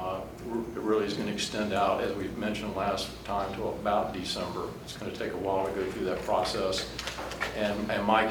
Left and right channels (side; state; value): both; identical; correlation 1.00